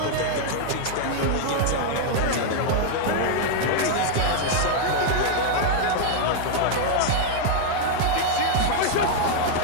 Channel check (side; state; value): both; different; correlation 0.00